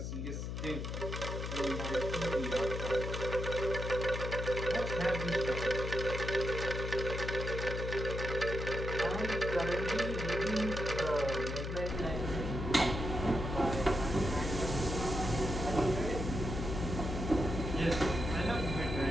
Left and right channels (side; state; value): left; noise; hum, 4 dB below the sound